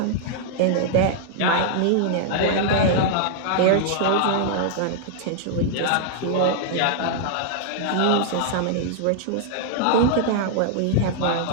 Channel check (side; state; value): both; different; correlation -0.01